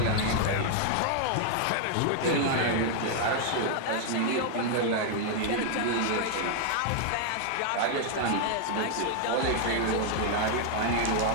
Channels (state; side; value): different; both; correlation 0.00